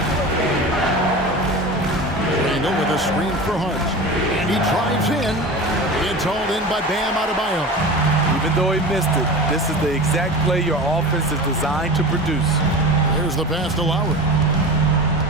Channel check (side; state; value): both; normal; correlation 0.31